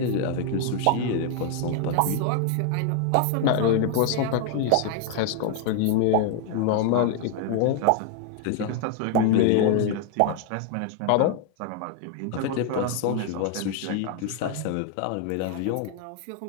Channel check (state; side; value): different; both; correlation 0.00